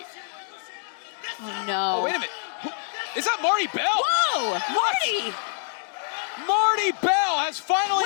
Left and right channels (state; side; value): silent; right; 61 dB below the other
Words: No. Oh, wait a minute. Is that Marty Bell? Whoa, Marty! Marty Bell has